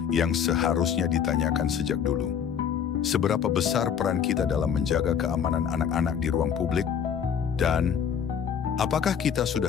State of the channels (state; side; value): quieter; right; 7.8 dB